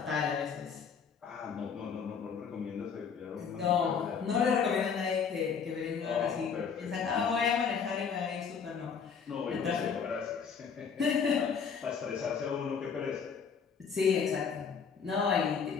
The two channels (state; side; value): quieter; right; 6.4 dB